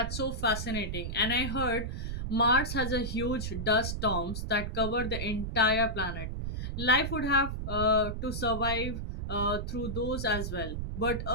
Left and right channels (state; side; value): noise; right; rumble, 4 dB below the sound